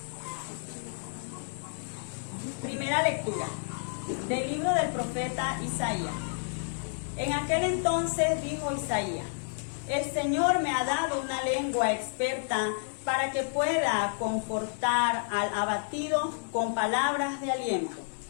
Primera lectura del libro del profeta Isaías. En aquel entonces dijo Isaías: el Señor me ha dado una lengua experta para que pueda confortar al abatido con palabras de aliento.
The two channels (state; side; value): silent; right; digital silence